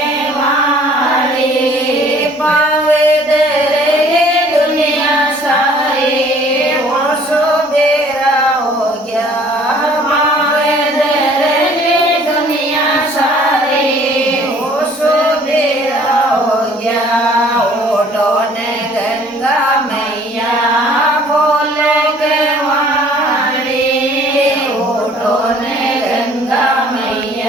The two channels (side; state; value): both; normal; correlation 0.55